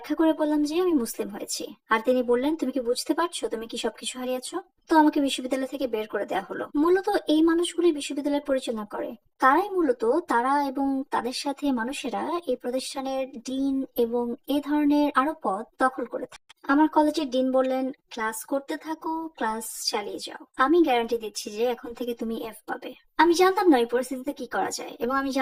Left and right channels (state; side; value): identical; both; correlation 1.00